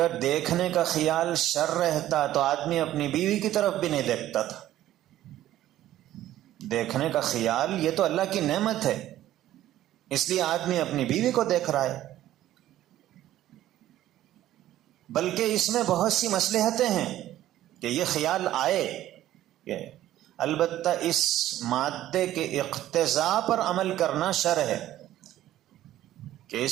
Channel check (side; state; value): left; quieter; 13.5 dB